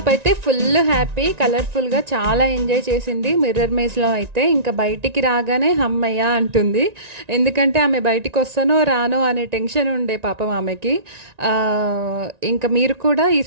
అయితే ఫుల్ హ్యాపీ, కలర్ఫుల్గా చాలా ఎంజాయ్ చేసింది మిర్రర్ మేజ్లో అయితే. ఇంకా బయటికి రాగానే హమ్మయ్య అంటుంది, ఎందుకంటే ఆమె బయటికి వస్తానో రానో అనే టెన్షన్ ఉండే పాపం ఆమెకి. ఇంకా మీరు కూడా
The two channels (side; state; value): left; late; 1.9 ms